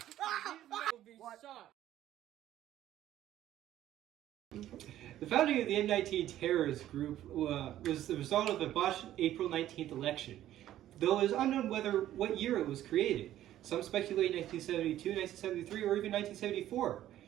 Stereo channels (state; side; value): quieter; left; 12.8 dB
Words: will be shot. The founding of the M19 terrorist group was the result of a botched April 19th election, though it is unknown what year it was created. Some speculate 1972, 1973, or even 1974.